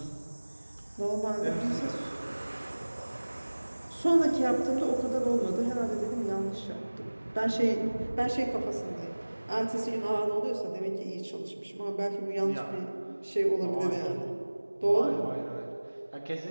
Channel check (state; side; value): inverted; both; correlation -1.00